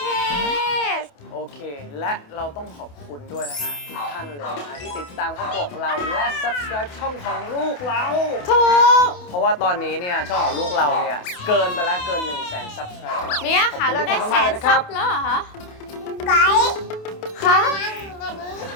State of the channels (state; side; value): late; right; 28 ms